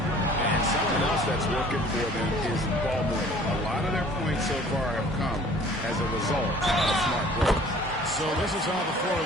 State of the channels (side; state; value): both; normal; correlation 0.51